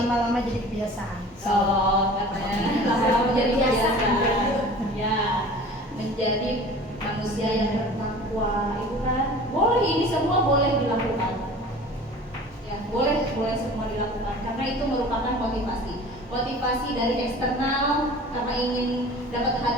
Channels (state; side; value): normal; both; correlation 0.42